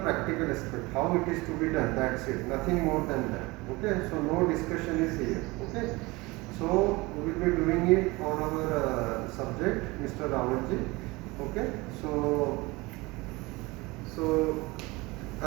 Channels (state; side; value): quieter; left; 23.0 dB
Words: practical aspect, how it is to be done, that's it, nothing more than that. Okay, so no discussion is here. Okay, so we will be doing it on our subject Mr. Rawalji. Okay, so आ